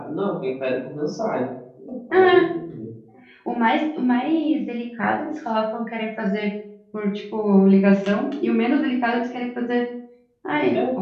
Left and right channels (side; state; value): both; identical; correlation 1.00